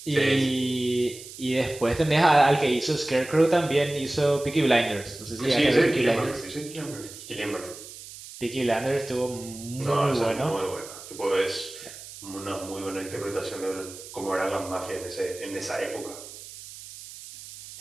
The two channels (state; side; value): noise; right; hiss, 15 dB below the sound